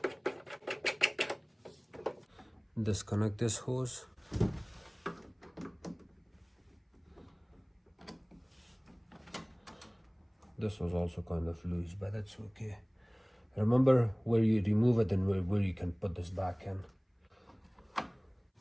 Disconnect this hose. This was also kind of loose, but that's okay. Remember where you remove it and where you can put this back in.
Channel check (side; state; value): both; identical; correlation 1.00